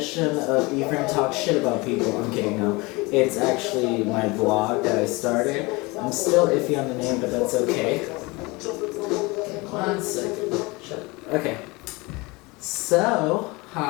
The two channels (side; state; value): right; quieter; 24.7 dB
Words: of Ephraim Talks Shit About People. I'm kidding, no. It's actually my vlog that I started. I'm still iffy on the name, but that's okay. 1 second. Shut up. Okay. So,